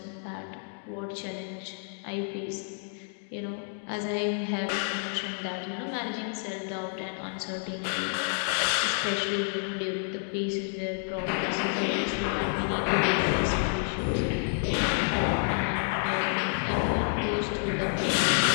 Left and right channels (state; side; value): silent; right; 58 dB below the other